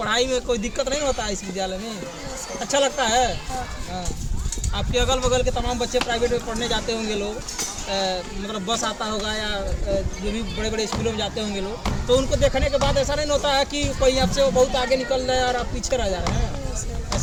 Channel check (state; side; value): identical; both; correlation 1.00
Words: में कोई दिक्कत नहीं होता है इस विद्यालय में? अच्छा लगता है? हाँ। आपके अगल बगल के तमाम बच्चे प्राइवेट में पढ़ने जाते होंगे लोग, मतलब बस आता होगा या जो भी बड़े बड़े स्कूलों में जाते होंगे लोग, तो उनको देखने के बाद ऐसा नहीं होता है कि कोई आपसे वो बहुत आगे निकल रहे हैं और आप पीछे रह जा रहे हैं?